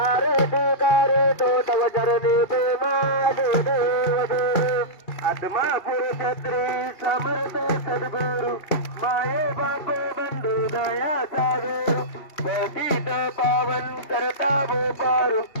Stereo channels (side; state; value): right; late; 2.8 ms